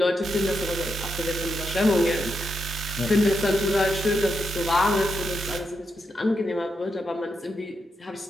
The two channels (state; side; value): normal; both; correlation 0.83